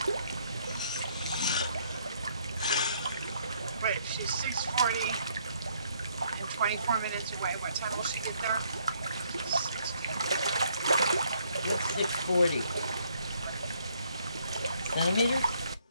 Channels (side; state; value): both; inverted; correlation -0.68